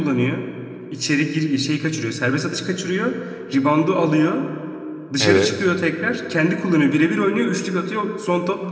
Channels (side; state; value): both; identical; correlation 1.00